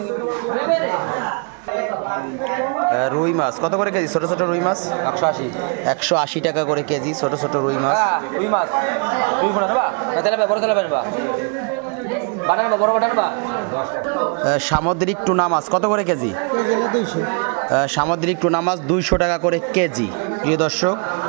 রুই মাছ কত করে কেজি? ছোট ছোট রুই মাছ 180 টাকা করে কেজি, ছোট ছোট রুই মাছ। রুই মাছ, রুই বড় না বা তেলাপিয়া, বড় তেলাপিয়া বা বানানো বড় বাটান বা। সামুদ্রিক টুনা মাছ কত করে কেজি? সামুদ্রিক টুনা মাছ 200 টাকা করে কেজি। প্রিয় দর্শক,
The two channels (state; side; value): quieter; left; 37.4 dB